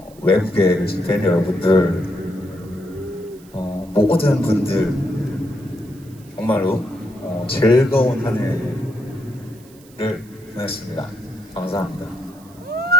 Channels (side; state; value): right; noise; hiss, 26 dB below the sound